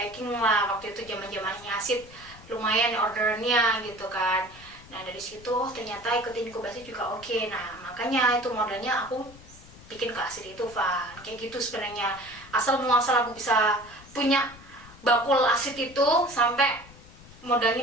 lah. Waktu itu zaman-zamannya asid lumayan ordernya gitu kan. Nah dari situ ternyata ikutin inkubasi juga oke. Nah makanya itu modalnya aku bikin ke asid itu Van. Kayak gitu sebenarnya. Asal muasal aku bisa punya bakul asid itu sampai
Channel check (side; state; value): left; noise; rumble, 20 dB below the sound